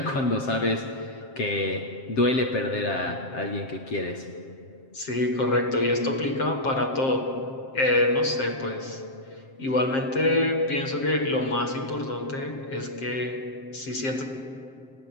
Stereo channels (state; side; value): late; right; 7.6 ms